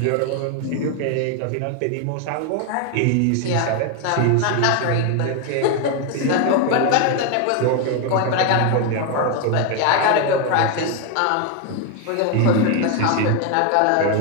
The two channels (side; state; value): both; different; correlation 0.01